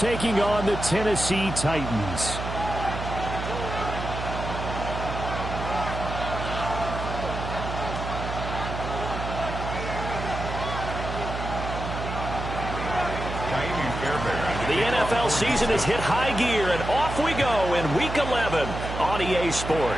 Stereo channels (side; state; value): right; noise; hum, 6 dB below the sound